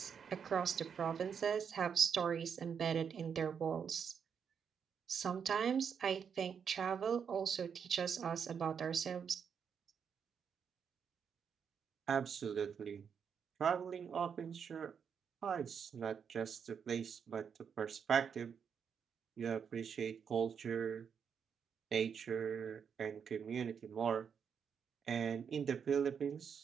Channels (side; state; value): left; quieter; 7.0 dB